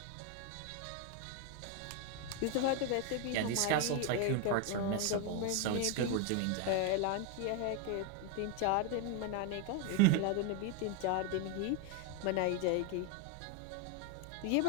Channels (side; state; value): both; different; correlation 0.01